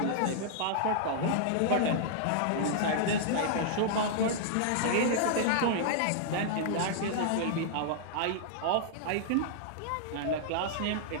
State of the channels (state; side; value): different; both; correlation -0.01